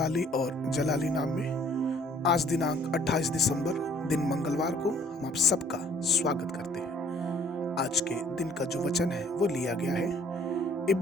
और जलाली नाम में आज दिनांक 28 दिसंबर दिन मंगलवार को हम आप सबका स्वागत करते हैं। आज के दिन का जो वचन है वो लिया गया है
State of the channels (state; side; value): normal; both; correlation 0.59